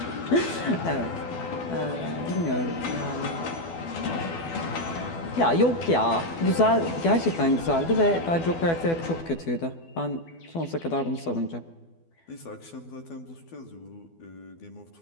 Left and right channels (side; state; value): right; late; 12 ms